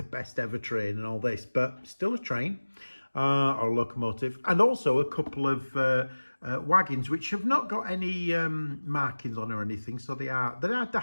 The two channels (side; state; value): both; inverted; correlation -1.00